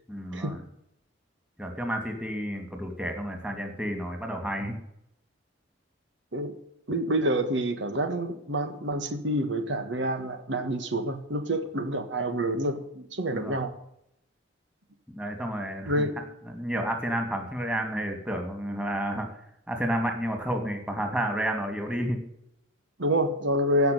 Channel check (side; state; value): both; normal; correlation 0.22